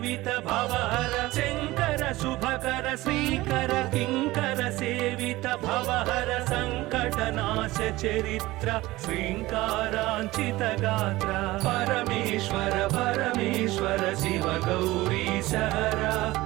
भवहर शंकर शुभकर श्रीकर किंकर सेवित भवहर संकटनाश चरित्र श्रींकारांचित गात्र परमेश्वर परमेश्वर शिव गौरी सहरा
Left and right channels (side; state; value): left; quieter; 18.7 dB